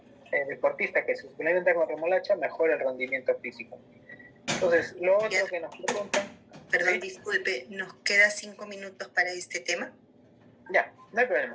deportistas que se suplementan con remolacha mejora el rendimiento físico. Entonces, lo otro que nos preguntan... Perdón, ¿sí? Disculpe, ¿nos queda 5 minutos para este tema? Ya, no hay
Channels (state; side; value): identical; both; correlation 1.00